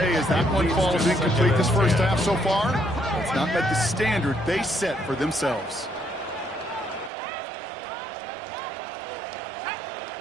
as that one falls incomplete this first half so far, it's not met the standard they set for themselves.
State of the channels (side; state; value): left; drops out; at 7.1 s